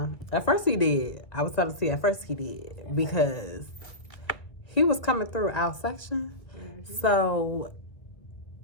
At first he did. I was telling you, at first he did. Because he was coming through our section. Mm-hmm. So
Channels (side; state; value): right; late; 1.6 ms